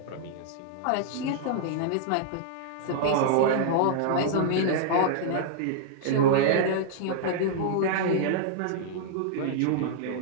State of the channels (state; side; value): different; both; correlation -0.01